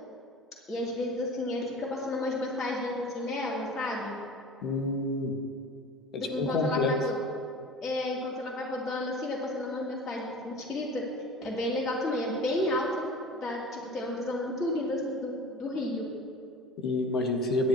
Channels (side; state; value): both; normal; correlation 0.39